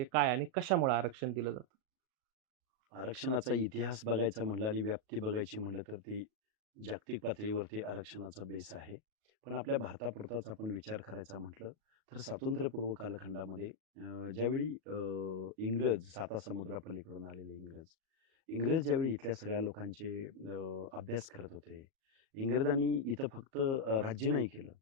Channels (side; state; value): left; late; 37 ms